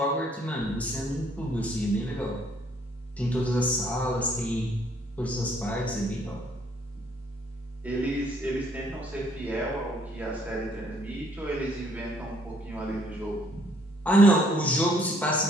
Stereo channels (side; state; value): both; normal; correlation 0.65